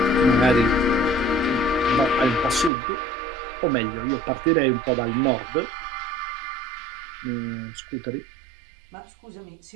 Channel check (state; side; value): drops out; left; at 2.7 s